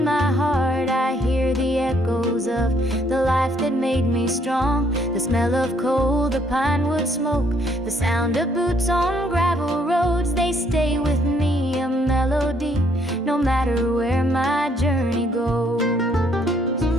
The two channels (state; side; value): normal; both; correlation 0.68